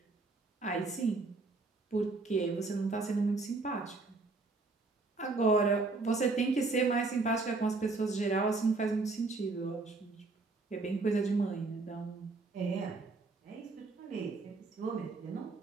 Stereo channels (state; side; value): quieter; left; 3.7 dB